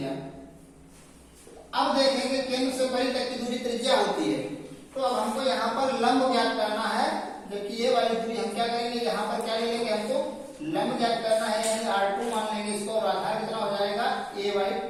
अब देखेंगे केंद्र से परी तक की दूरी त्रिज्या होती है, तो अब हमको यहाँ पर लंब ज्ञात करना है। जबकि ये वाली दूरी हम क्या करेंगे, यहाँ पर क्या ले लेंगे, हमको लंब ज्ञात करना है, यानी R2 मान लेंगे इसको, और आधार कितना हो जाएगा,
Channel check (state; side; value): identical; both; correlation 1.00